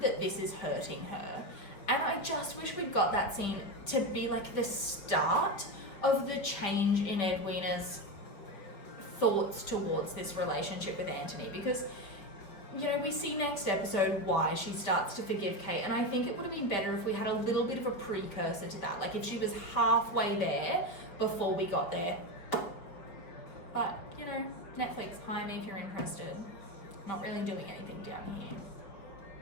that this is hurting her? And I just wish we'd got that scene to be like the start of the change in Edwina's thoughts towards this relationship with Anthony, because, you know, we see next episode why she starts to forgive Kate, and I think it would have been better if we had a little bit of a precursor to that, like if she was halfway there before we got there. But, you know, Netflix, hire me if you're interested. Not really doing anything down here.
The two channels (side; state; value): right; late; 5.3 ms